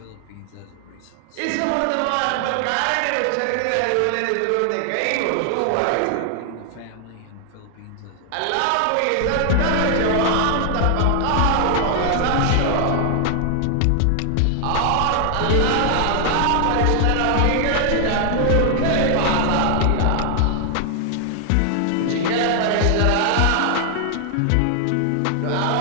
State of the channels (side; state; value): both; different; correlation 0.00